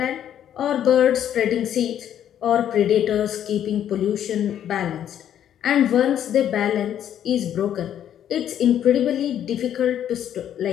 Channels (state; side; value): quieter; right; 10.2 dB